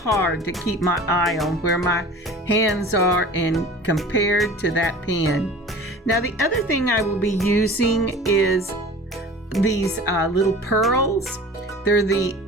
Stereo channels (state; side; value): normal; both; correlation 0.41